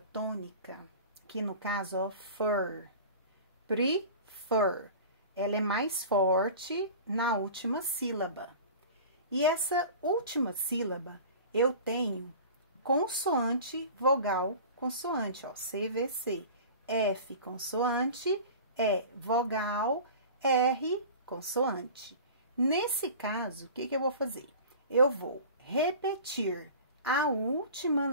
tônica, que no caso, ó, fur, prefer, ela é mais forte na última sílaba. E essa última sílaba, eu tenho consoante, vogal, consoante, ó, CVC. F, consoante, E, vogal, R, consoante. Nesse caso, o que eu vou fazer? Eu vou repetir a última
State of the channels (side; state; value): both; inverted; correlation -0.38